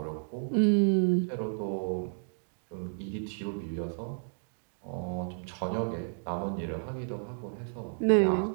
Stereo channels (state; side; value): silent; left; digital silence